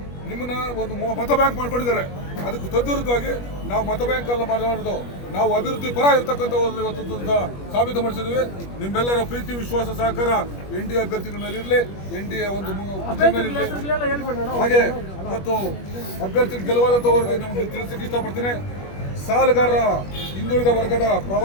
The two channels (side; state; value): right; late; 21 ms